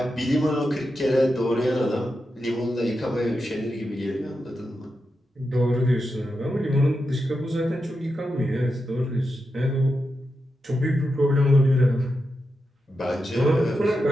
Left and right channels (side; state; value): both; normal; correlation 0.88